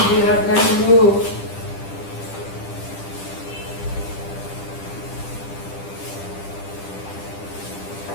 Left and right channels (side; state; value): right; late; 10 ms